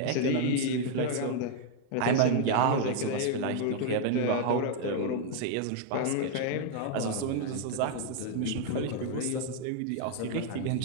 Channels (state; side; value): different; both; correlation 0.00